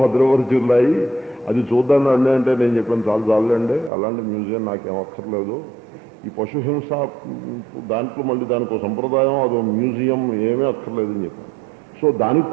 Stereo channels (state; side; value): drops out; left; at 3.9 s